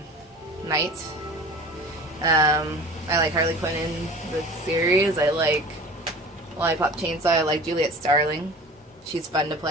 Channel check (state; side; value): normal; both; correlation 0.40